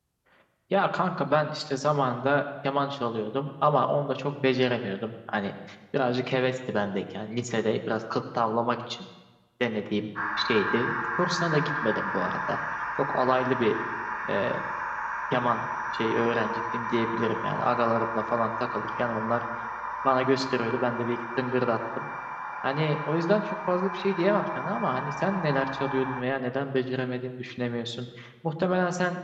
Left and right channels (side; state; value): both; identical; correlation 1.00